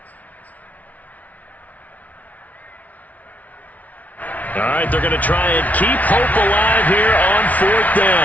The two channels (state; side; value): late; right; 0.072 ms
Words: All right, they're going to try and keep hope alive here on 4th